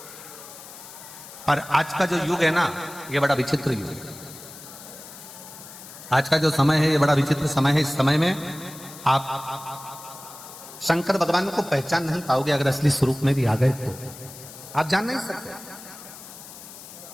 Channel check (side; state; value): left; noise; hiss, 16 dB below the sound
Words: पर आज का जो युग है ना, ये बड़ा विचित्र युग है। आज का जो समय है ये बड़ा विचित्र समय है। इस समय में आप शंकर भगवान को पहचान नहीं पाओगे अगर असली स्वरूप में भी आ गए तो आप जान नहीं सकते।